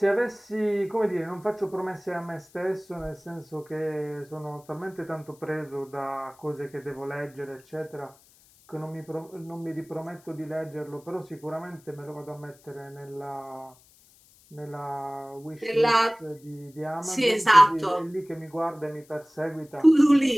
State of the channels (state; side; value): noise; left; hiss, 28 dB below the sound